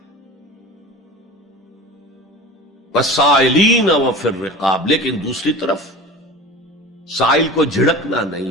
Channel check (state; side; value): normal; both; correlation 0.35